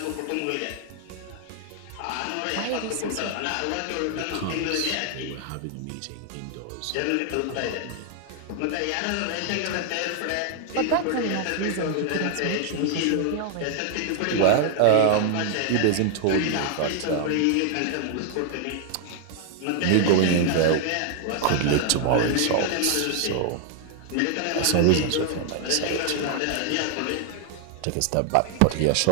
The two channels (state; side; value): different; both; correlation 0.00